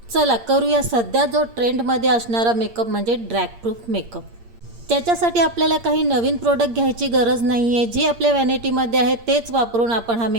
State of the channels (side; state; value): left; late; 8.7 ms